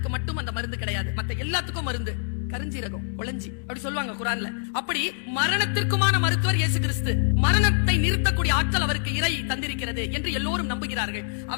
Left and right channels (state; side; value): silent; right; digital silence